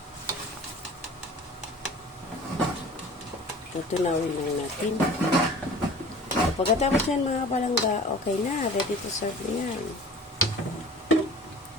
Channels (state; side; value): normal; both; correlation 0.43